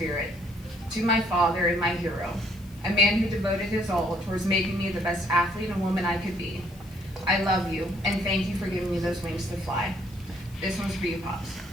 to my father and my hero, a man who devoted his all towards making me the best athlete and woman I could be. I love you, and thank you for giving me those wings to fly. This one's for you, Pops.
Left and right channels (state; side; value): noise; left; hiss, 27 dB below the sound